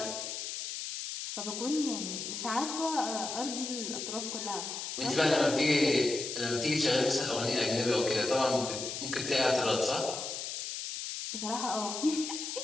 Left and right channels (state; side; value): noise; left; hiss, 5 dB below the sound